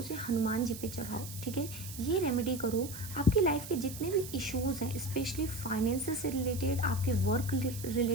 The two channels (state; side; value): noise; right; hiss, 12 dB below the sound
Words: हनुमान जी पे चढ़ाओ, ठीक है। ये रेमेडी करो, आपकी लाइफ के जितने भी इश्यूज़ हैं, स्पेशली फाइनेंस से रिलेटेड, आपके वर्क